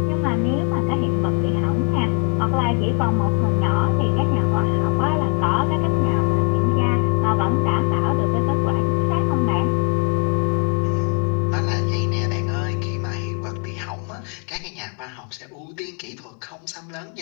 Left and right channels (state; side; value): quieter; right; 37.6 dB